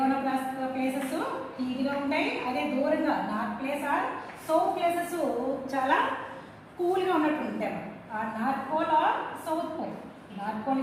ఉన్న ప్లేసెస్ హీట్గా ఉంటాయి. అదే దూరంగా north place or south places చాలా కూల్గా ఉన్నట్టు ఉంటాయి. ఆ north pole or south pole. North pole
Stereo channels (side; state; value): both; identical; correlation 1.00